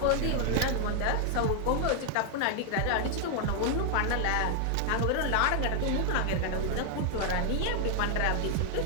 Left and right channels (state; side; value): different; both; correlation 0.00